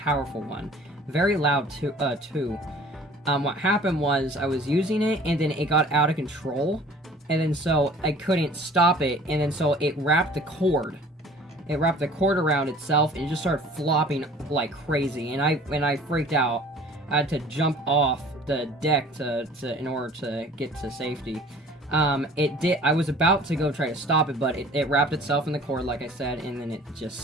one, very loud too. What happened was I was using it, and then it got out of control, and then so I couldn't stop it, and then so it wrapped the cord. It wrapped the cord around itself, and it just started flopping like crazy, and I freaked out. I had to jump off the deck in order to get to safety. I was about to go try to stop it, but it wrapped itself in the cord, like I said, and then it just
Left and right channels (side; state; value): both; normal; correlation 0.49